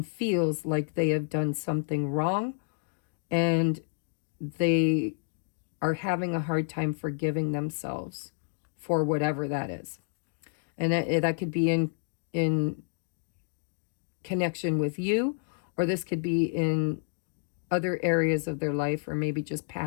feels like they have done something wrong and they are having a hard time forgiving themselves for whatever that is. And that could be in connection with you, or this could be in other areas of their life, or maybe just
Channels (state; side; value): silent; right; digital silence